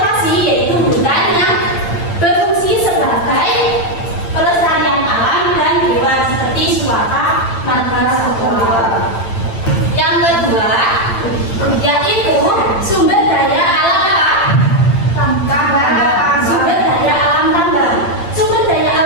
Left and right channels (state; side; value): late; right; 8.8 ms